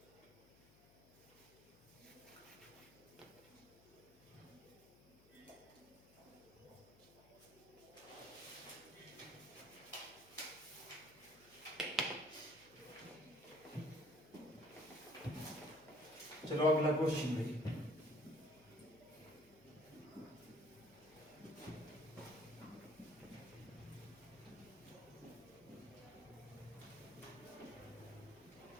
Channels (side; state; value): left; noise; hum, 24 dB below the sound